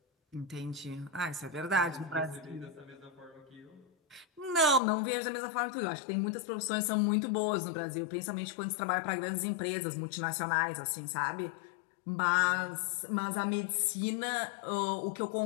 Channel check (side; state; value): right; drops out; at 4.8 s